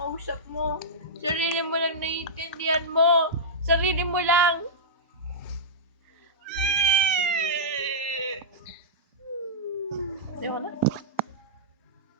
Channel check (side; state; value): both; normal; correlation -0.14